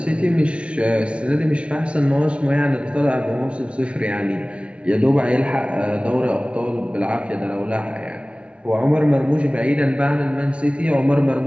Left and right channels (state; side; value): late; left; 0.060 ms